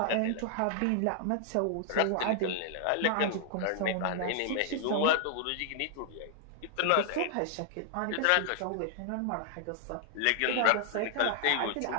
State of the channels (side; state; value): both; different; correlation 0.00